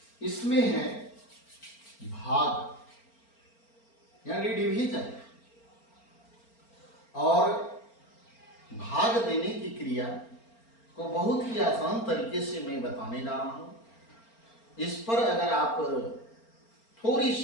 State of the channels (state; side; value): late; right; 4.4 ms